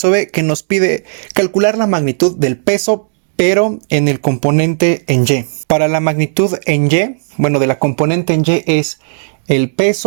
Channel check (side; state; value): left; silent; digital silence